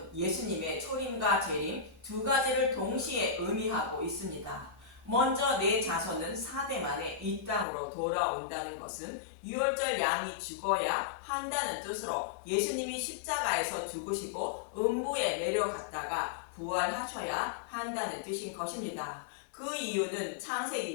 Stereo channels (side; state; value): right; drops out; at 7.7 s